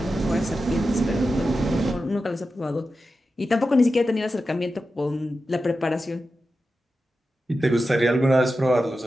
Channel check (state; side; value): normal; both; correlation 0.91